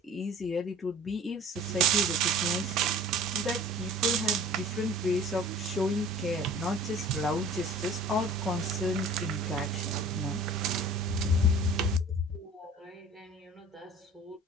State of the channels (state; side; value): normal; both; correlation 0.45